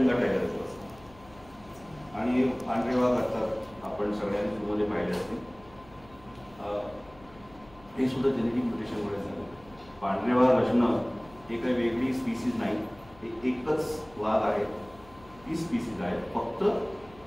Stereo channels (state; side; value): noise; left; hum, 23 dB below the sound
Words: टायगरचा असतो, आणि पांढरे वाघ असतात आपण सगळ्यांनी मध्ये पाहिले असतील. हे सुद्धा जेनेटिक म्युटेशनमुळे झालं. पांढरे वाघ असणं हे काही वेगळी स्पीसीज नाही, हे एकच वाघ आहे, ती स्पीसीज आहे, फक्त